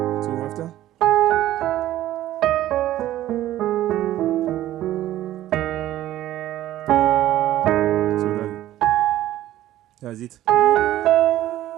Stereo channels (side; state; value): left; quieter; 13.8 dB